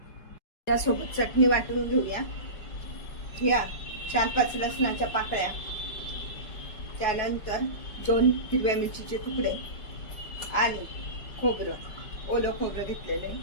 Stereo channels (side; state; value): right; late; 4.7 ms